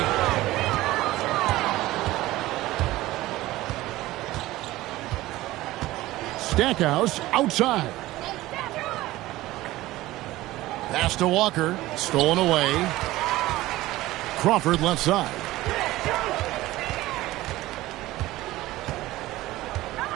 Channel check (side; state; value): left; quieter; 17.2 dB